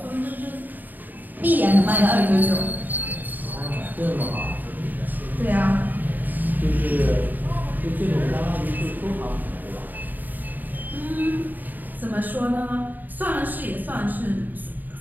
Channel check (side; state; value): left; late; 0.087 ms